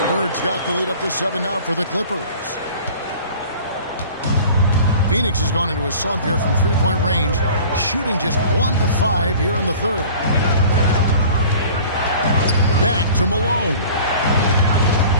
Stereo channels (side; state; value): both; inverted; correlation -0.44